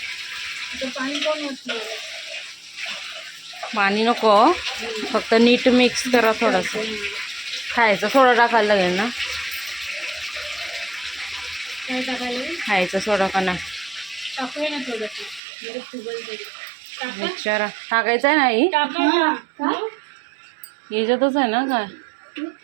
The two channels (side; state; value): left; drops out; at 15.4 s